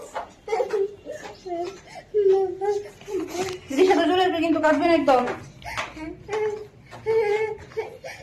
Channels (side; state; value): both; identical; correlation 1.00